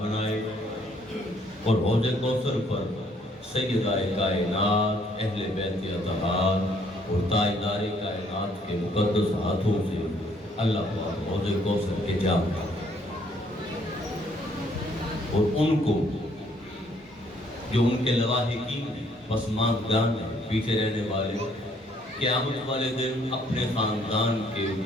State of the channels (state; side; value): normal; both; correlation 0.65